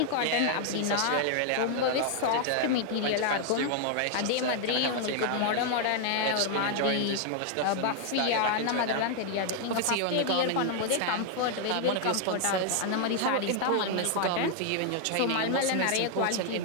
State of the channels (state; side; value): different; both; correlation 0.00